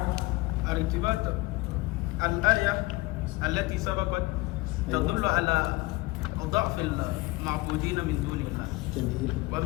الارتباط الآية التي سبقت تدل على ضعف المعبودين من دون الله. جميل.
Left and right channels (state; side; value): quieter; right; 21.8 dB